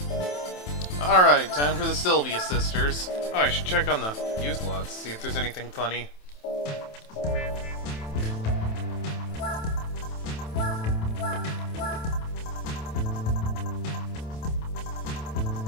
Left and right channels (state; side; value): late; right; 27 ms